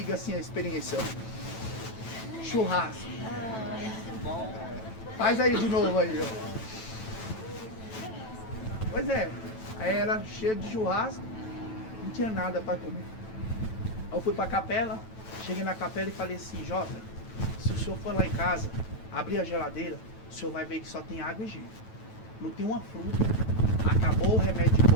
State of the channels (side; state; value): right; late; 9.1 ms